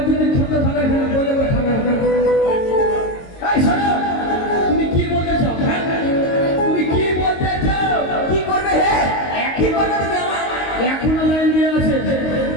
যদি ঠান্ডা ঠান্ডা খেলে বলে বলে ঠান্ডা এই শোনো তুমি কি বলতে চাও? হ্যাঁ তুমি কি বলতে চাও? কি করবে হে কি করবে তুমি আমার এখনো লাইন দিয়ে আছে।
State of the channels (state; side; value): late; right; 22 ms